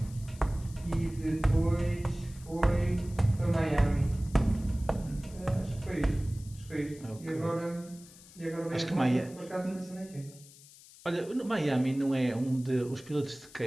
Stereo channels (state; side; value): noise; left; hiss, 21 dB below the sound